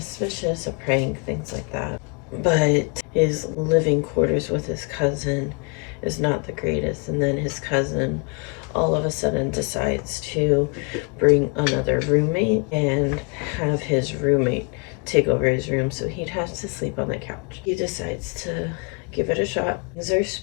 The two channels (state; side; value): quieter; right; 34.0 dB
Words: a prank, things like that. But his living quarters with his cousin is not the greatest, and then his cousin all of a sudden decides to bring another roommate and have his roommate take over his room, so he'd have to sleep on the couch. He decides to give it a shot. Things are